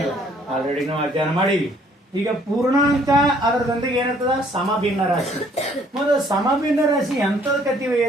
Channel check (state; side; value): normal; both; correlation 0.62